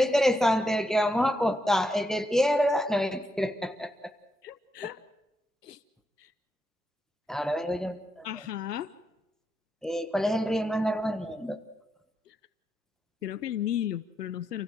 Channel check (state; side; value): normal; both; correlation 0.82